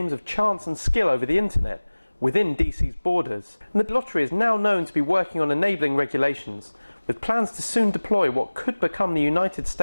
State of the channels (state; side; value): inverted; both; correlation -1.00